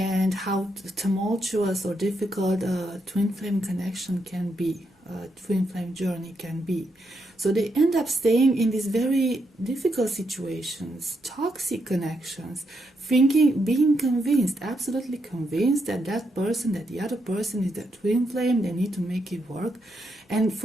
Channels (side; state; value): both; normal; correlation 0.80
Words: how tumultuous or difficult a twin flame connection can be, a twin flame journey can be. So they end up staying in these very difficult situations, toxic connections, thinking, being convinced, absolutely convinced that that person, that the other person is their twin flame, they need to make it work, and